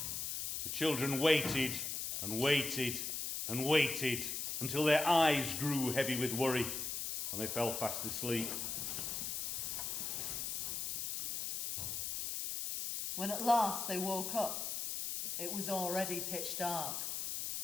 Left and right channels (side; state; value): left; noise; hiss, 2 dB below the sound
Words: children waited and waited and waited until their eyes grew heavy with worry and they fell fast asleep. When at last they woke up, it was already pitch dark,